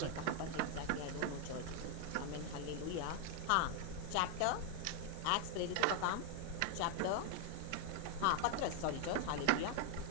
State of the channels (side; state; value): both; different; correlation 0.00